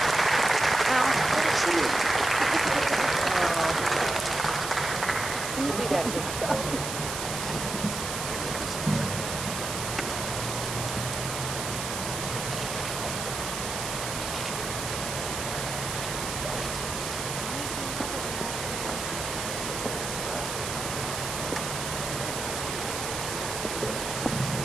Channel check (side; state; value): right; noise; hiss, 5 dB below the sound